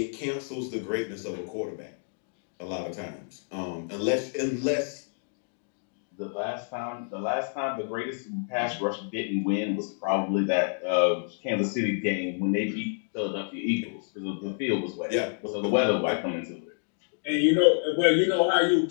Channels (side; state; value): right; silent; 59 dB below the other